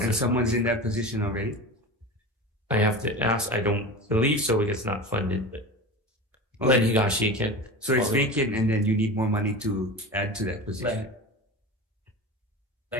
And someone's in that position already? I have to ask. I don't believe so because it's not funded, but Len Higashi can. So it's vacant and then you need more money to add to that position.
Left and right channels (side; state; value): both; normal; correlation 0.30